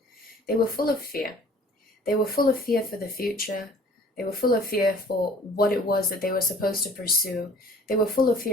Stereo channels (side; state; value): both; normal; correlation 0.51